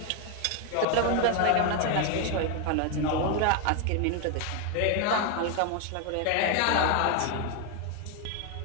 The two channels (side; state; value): both; different; correlation 0.01